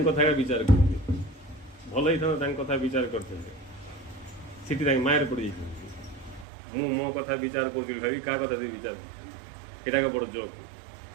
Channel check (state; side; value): drops out; left; at 6.5 s